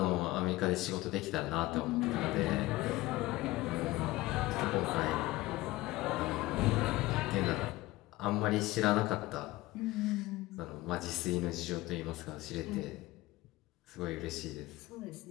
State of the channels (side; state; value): right; quieter; 18.7 dB